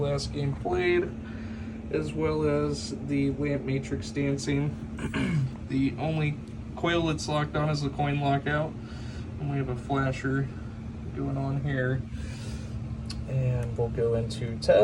game played, as well as the lamp matrix dancing. The only coil that's locked on is the coin lockout, and we have a flasher going on here. And we'll go into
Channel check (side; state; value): both; identical; correlation 1.00